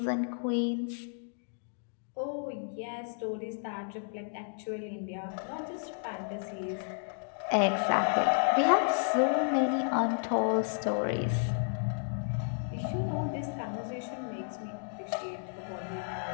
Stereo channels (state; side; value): silent; right; digital silence